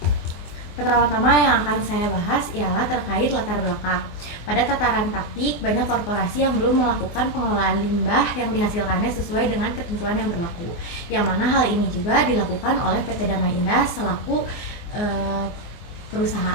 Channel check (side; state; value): right; late; 24 ms